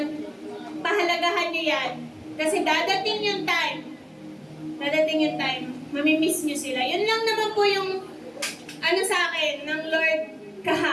pahalagahan nyo yan. Kasi dadating yung time, mamimiss nyo sila. Yun lang naman po yung sa akin ng Lord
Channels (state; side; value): identical; both; correlation 1.00